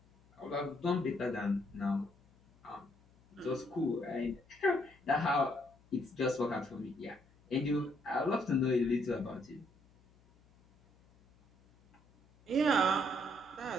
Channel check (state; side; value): noise; left; hum, 30 dB below the sound